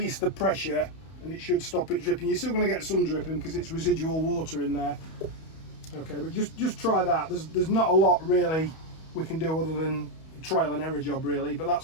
the pressure and it should stop it dripping. You're still going to get some dripping because it's residual water in there. Okay, but just try that. There's not a lot really we can do other than trial and error job really, but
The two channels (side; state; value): right; late; 31 ms